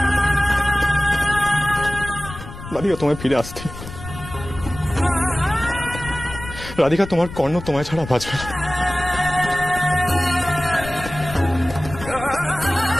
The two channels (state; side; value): noise; left; rumble, 12 dB below the sound